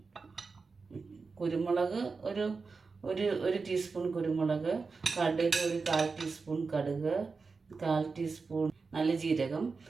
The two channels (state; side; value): quieter; left; 4.5 dB